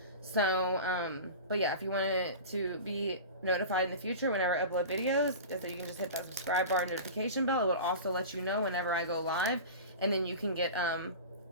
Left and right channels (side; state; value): both; inverted; correlation -0.32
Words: So, but yeah, if you wanted to be notified in the future whenever I upload videos, so you can just hit that subscribe bar and notification bell. It will also let you know whenever I go live, and then you can get,